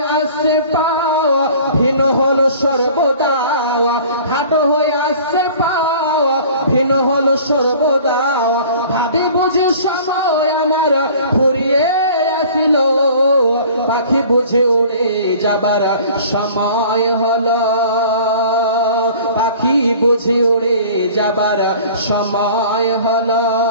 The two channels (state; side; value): inverted; both; correlation -0.47